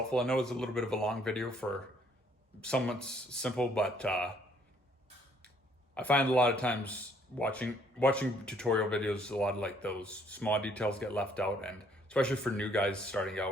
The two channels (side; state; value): both; normal; correlation 0.64